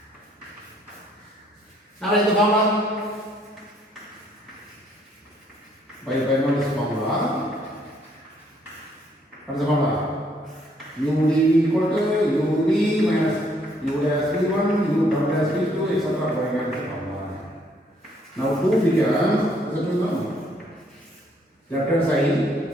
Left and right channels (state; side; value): normal; both; correlation 0.67